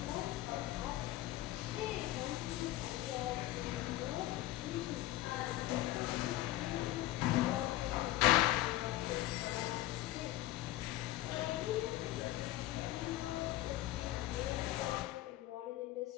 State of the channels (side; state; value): right; quieter; 16.1 dB